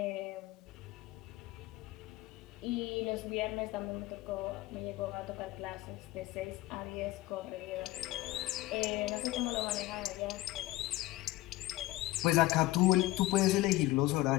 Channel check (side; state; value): right; quieter; 17.7 dB